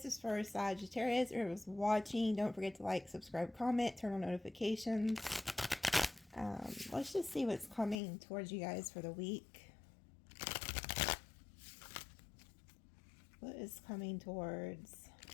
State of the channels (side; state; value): right; drops out; at 8.0 s